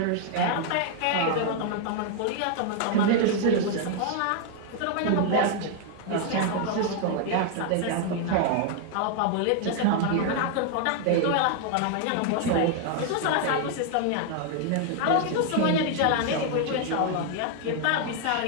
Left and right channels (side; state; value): both; different; correlation 0.00